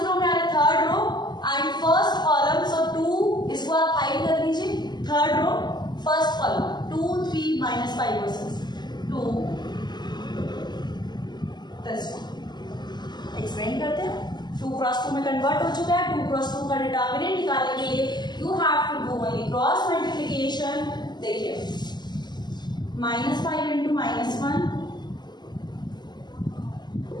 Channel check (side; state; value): right; late; 0.21 ms